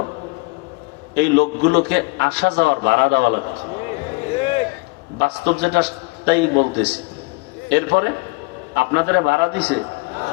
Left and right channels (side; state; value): right; quieter; 26.9 dB